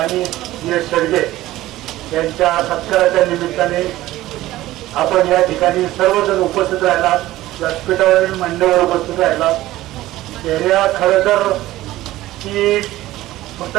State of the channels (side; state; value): left; quieter; 16.0 dB